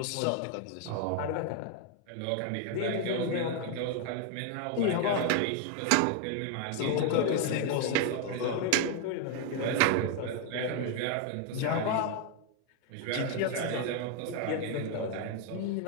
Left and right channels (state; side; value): different; both; correlation 0.00